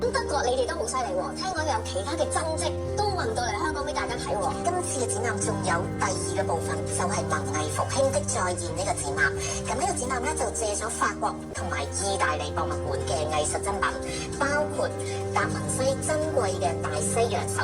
德國你哋都好犀利喎，聽講有其他嘅真跡都運到嚟香港俾大家睇喎。今次嘅展覽仲有第2個部分，就係文藝復興的再現呢個展覽。咁呢個展覽咧就借咗法國同埋意大利博物館嘅藝術珍品，包括達文西珍貴嘅大西洋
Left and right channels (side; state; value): both; identical; correlation 1.00